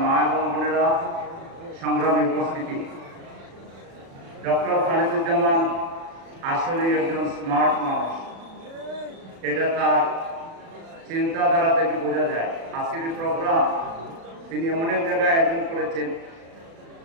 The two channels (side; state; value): left; late; 36 ms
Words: মা এবং বোনেরা, সংগ্রামী উপস্থিতি। ডক্টর খালিদুজ্জামান আসলে একজন স্মার্ট মানুষ, এটা তার চিন্তাধারা থেকে বোঝা যায়। আজকের এই প্রোগ্রাম তিনি এমন এক জায়গায় আয়োজন করেছেন